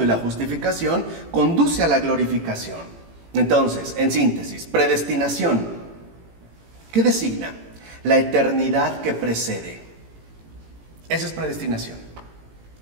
y la justificación conduce a la glorificación. Entonces, en síntesis, predestinación, ¿qué designa? La eternidad que precede. Esa es predestinación.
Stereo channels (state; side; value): late; left; 18 ms